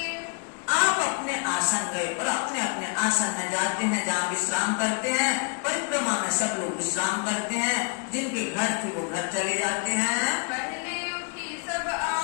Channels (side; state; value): right; quieter; 37.2 dB